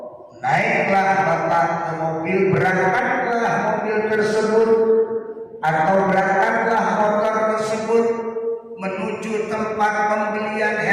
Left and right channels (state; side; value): identical; both; correlation 1.00